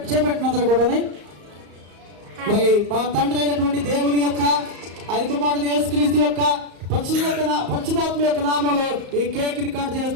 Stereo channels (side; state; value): left; late; 35 ms